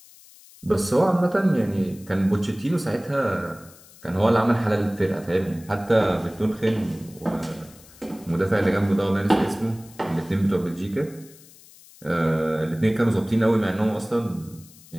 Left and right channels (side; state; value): left; noise; hiss, 23 dB below the sound